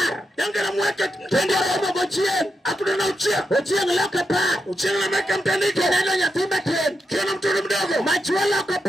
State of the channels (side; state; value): both; normal; correlation 0.85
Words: yange na mweke tukoromo gochie akuta na uchie loke par uchie na meka mtandiko neno nyatimba ten kiona mtoto mdogo machua loke